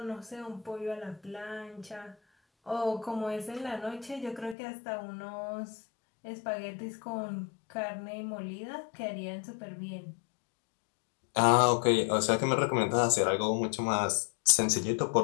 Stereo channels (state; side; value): drops out; right; at 4.5 s